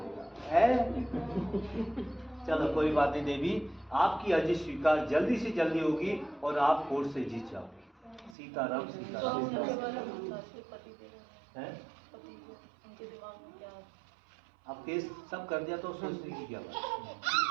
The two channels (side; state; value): left; drops out; at 8.3 s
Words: है। चलो कोई बात नहीं देवी, आपकी अर्जी स्वीकार जल्दी से जल्दी होगी और आप कोर्ट से जीत जाओगे। सीताराम सीताराम है। अब केस सब कर दिया तो सोचने की क्या बात,